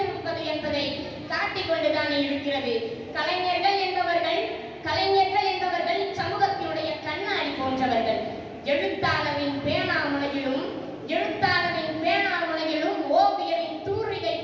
என்பதை காட்டிக்கொண்டுதானே இருக்கிறது. கலைஞர்கள் என்பவர்கள் இச்சமூகத்தினுடைய கண்ணாடி போன்றவர்கள். எழுத்தாளரின் பேனாமுனையிலும் ஓவியரின் தூரிகை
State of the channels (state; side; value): identical; both; correlation 1.00